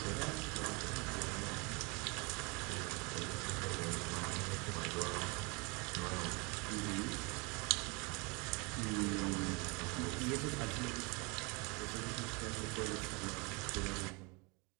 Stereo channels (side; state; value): left; quieter; 29.1 dB